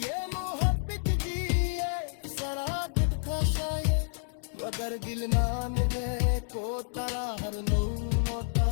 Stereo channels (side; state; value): right; silent; digital silence